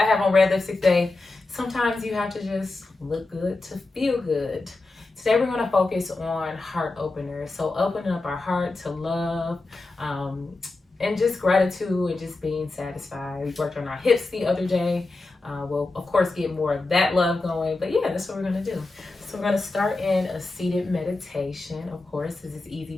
have on Red Lipstick Day. Sometimes you have to just look good to feel good. Today we're going to focus on heart openers. So opening up our heart to love and just gratitude and just being satisfied. We worked on our hips the other day. We'll, of course, get more of that love going. But yeah, that's what we're going to do. So we're going to start in a seated meditation. Of course, this is easy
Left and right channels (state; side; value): quieter; right; 3.3 dB